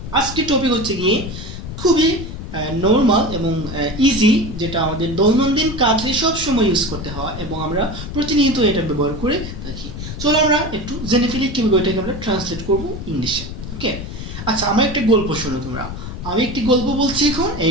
আজকের টপিক হচ্ছে গিয়ে খুবই নরমাল এবং ইজি, যেটা আমাদের দৈনন্দিন কাজে সব সময় ইউজ করতে হয় এবং আমরা প্রতিনিয়ত এটা ব্যবহার করে থাকি। চলো আমরা একটু জেনে ফেলি কিভাবে এটাকে আমরা ট্রান্সলেট করব ইংলিশে। ওকে, আচ্ছা, আমার একটা গল্প শোনো তোমরা। আমি একটি গল্প বলছি এখন,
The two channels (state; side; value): noise; left; rumble, 9 dB below the sound